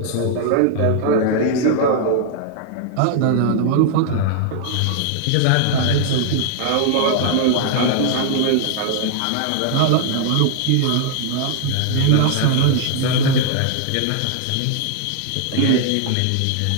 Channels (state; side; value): different; both; correlation 0.00